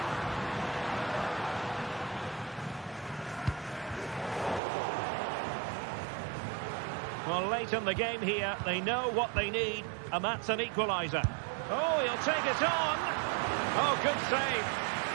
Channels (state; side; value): drops out; left; at 4.6 s